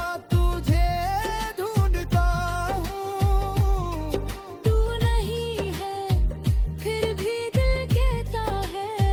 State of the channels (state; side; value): identical; both; correlation 1.00